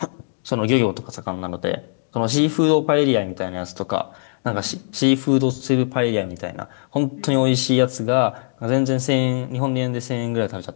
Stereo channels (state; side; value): silent; right; digital silence